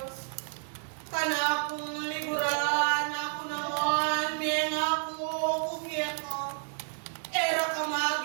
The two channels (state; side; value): silent; left; digital silence